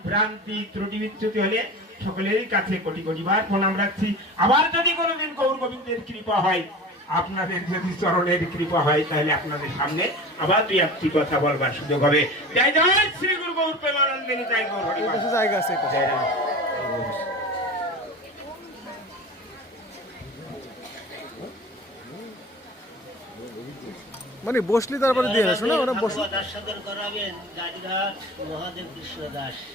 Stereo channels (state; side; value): normal; both; correlation 0.35